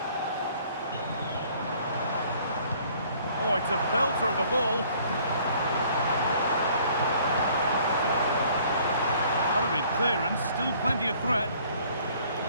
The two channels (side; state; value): both; inverted; correlation -0.58